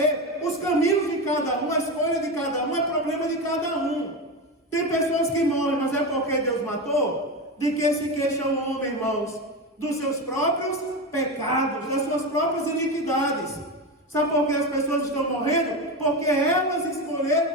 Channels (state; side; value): normal; both; correlation 0.18